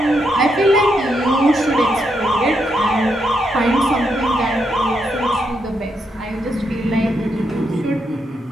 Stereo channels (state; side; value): normal; both; correlation 0.80